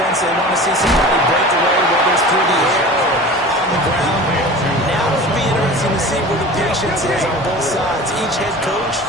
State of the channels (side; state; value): both; normal; correlation 0.38